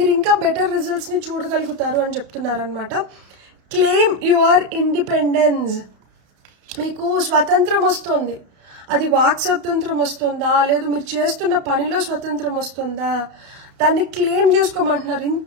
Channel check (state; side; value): late; left; 31 ms